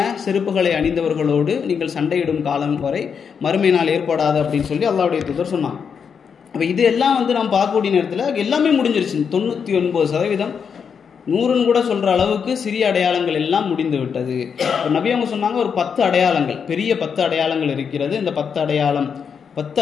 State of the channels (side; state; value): right; quieter; 6.6 dB